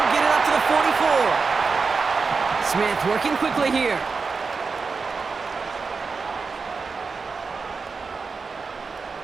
get it up to the 44. Smith working quickly here.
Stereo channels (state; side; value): quieter; left; 4.7 dB